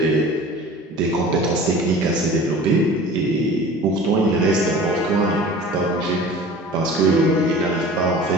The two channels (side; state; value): both; normal; correlation 0.41